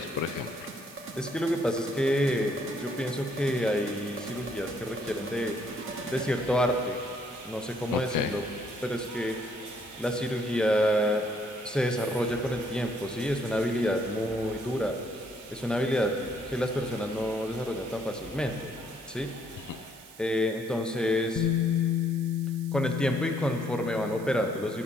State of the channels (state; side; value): noise; right; hiss, 20 dB below the sound